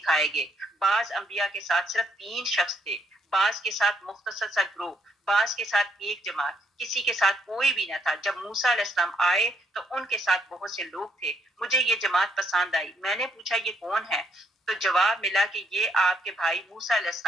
گے۔ بعض انبیاء کے ساتھ صرف 3 شخص تھے، بعض کے ساتھ مختصر سا گروہ، بعض کے ساتھ ایک جماعت، کسی کے ساتھ کوئی بھی نہ تھا۔ جب موسیٰ علیہ السلام آئے تو ان کے ساتھ بہت سے لوگ تھے، مجھے یہ جماعت پسند آئی۔ میں نے پوچھا، یہ کون ہے؟ تو جواب ملا کہ یہ آپ کے بھائی موسیٰ علیہ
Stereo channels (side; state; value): both; normal; correlation 0.72